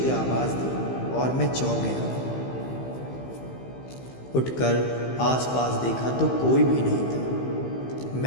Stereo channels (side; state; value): right; late; 15 ms